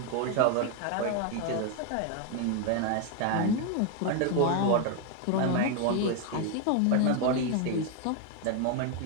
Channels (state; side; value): different; both; correlation 0.01